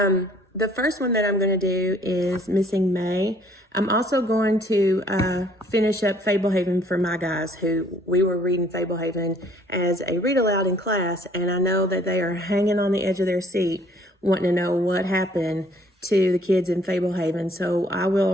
The first one that I'm going to do is Missing May. I'm also going to finish up Fablehaven for my guys who we were reading Fablehaven as a read aloud in class, and I know that they are hanging on the edge of their seat wanting to know what happened to the kids in Fablehaven. So I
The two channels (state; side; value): normal; both; correlation 0.59